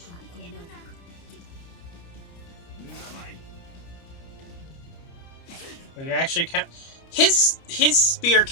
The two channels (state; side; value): late; right; 29 ms